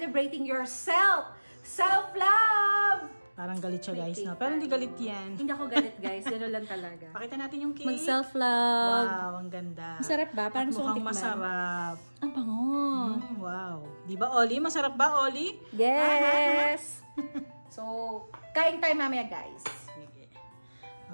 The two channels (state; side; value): inverted; both; correlation -1.00